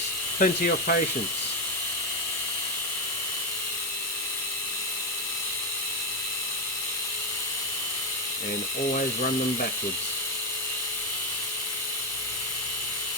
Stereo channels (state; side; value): normal; both; correlation 0.07